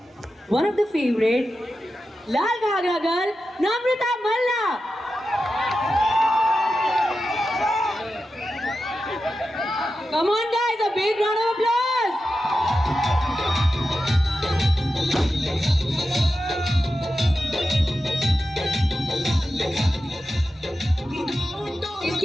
one of the favourite Lal Ghaghra girl Namrata Malla. Come on guys, a big round of applause.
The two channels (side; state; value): both; normal; correlation 0.91